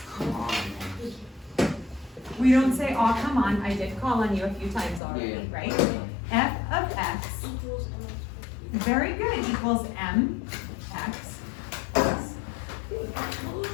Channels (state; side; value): drops out; right; at 5.0 s